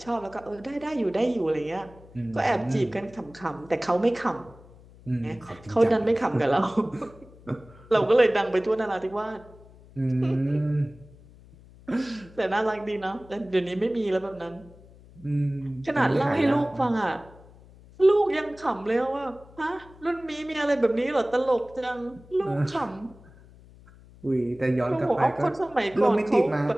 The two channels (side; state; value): left; noise; hum, 23 dB below the sound